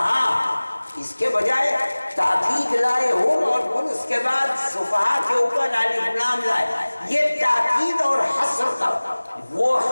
اس کے بجائے تاکید لائے ہم اور پھر اس کے بعد سفہاء کے اوپر الف لام لائے، یہ تاکید اور حصر کا وہ،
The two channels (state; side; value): inverted; both; correlation -1.00